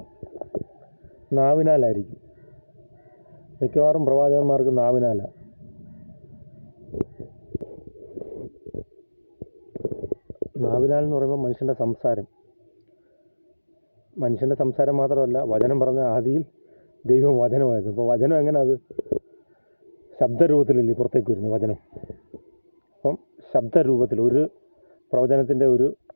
നാവിനാലായിരിക്കും. മിക്കവാറും പ്രവാചകന്മാർക്ക് നാവിനാലാണ്. നാവിനാൽ എന്ന് പറയുമ്പോൾ മനുഷ്യൻ്റെ സംസാരം മാത്രമല്ല, വചനം പറഞ്ഞ ആദിയിൽ ദൈവം വചനമായിരുന്നു. അപ്പോൾ വചനം എങ്ങനെ അത് ശബ്ദരൂപത്തിലല്ലേ പുറത്തേക്ക് വരുന്നത് വചനം. അപ്പം ശബ്ദരൂപത്തിൽ ഒരു പ്രവചനത്തിൻ്റെ ഒരു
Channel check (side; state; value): both; inverted; correlation -1.00